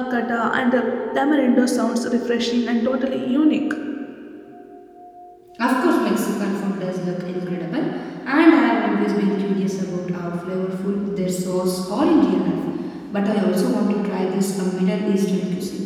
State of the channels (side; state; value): both; identical; correlation 1.00